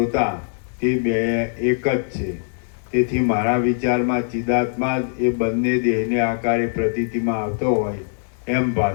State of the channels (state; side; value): silent; right; 58 dB below the other